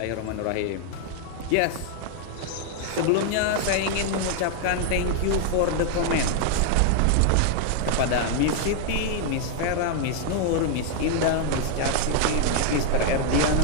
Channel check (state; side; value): different; both; correlation 0.00